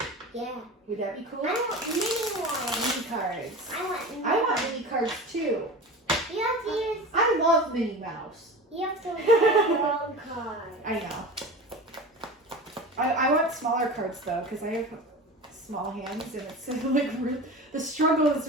Yeah. Would that be cool? I want mini ones. Mini cards. I want mini cards too. You have to use. I love Minnie Mouse. You have to use the wrong card. I know. I want smaller cards though, because I have small hands, and it's like the struggle is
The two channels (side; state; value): both; normal; correlation 0.31